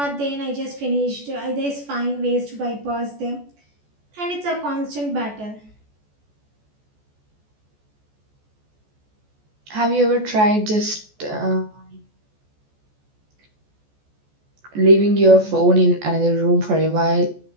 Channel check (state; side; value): late; left; 14 ms